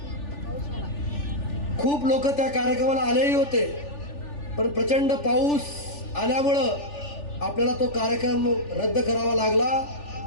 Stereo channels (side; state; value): right; late; 3.4 ms